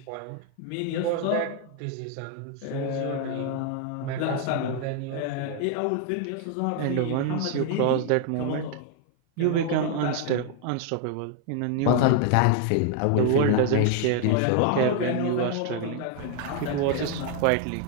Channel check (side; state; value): both; different; correlation 0.00